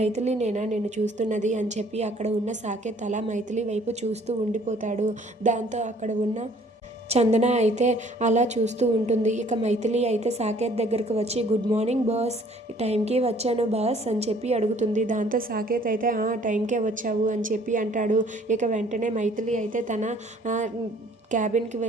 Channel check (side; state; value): both; normal; correlation 0.57